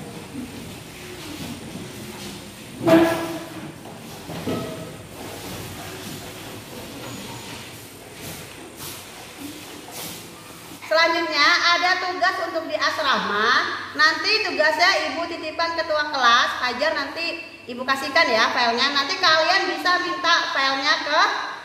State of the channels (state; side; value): identical; both; correlation 1.00